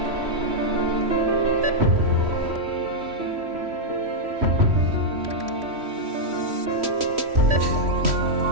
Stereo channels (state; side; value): late; left; 3.1 ms